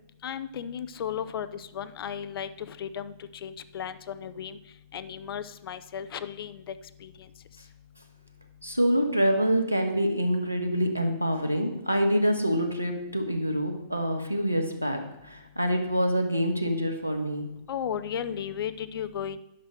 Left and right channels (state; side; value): inverted; both; correlation -0.79